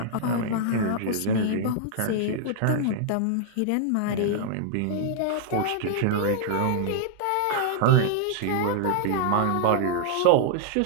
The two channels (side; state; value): both; different; correlation -0.01